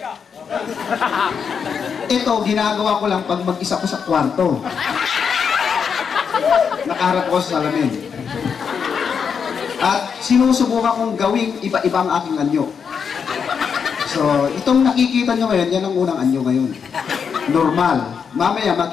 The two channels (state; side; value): quieter; right; 6.6 dB